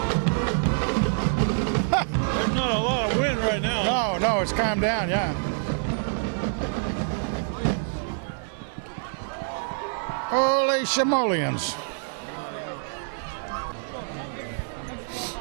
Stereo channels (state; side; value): silent; left; digital silence